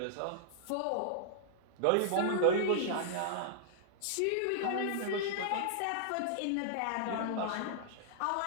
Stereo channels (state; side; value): different; both; correlation -0.01